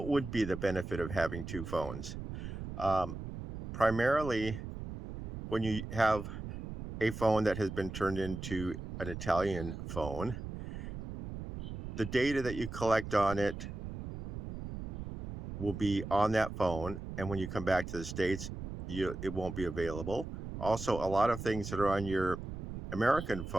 would be the benefit of having two phones? Um, Primarily, when you have a phone that has been turned into an Italian phone, the data that you collect on it will be on that phone, and when you come back to the States, it won't be available. Also, a lot of things that are on your American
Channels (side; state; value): right; noise; rumble, 8 dB below the sound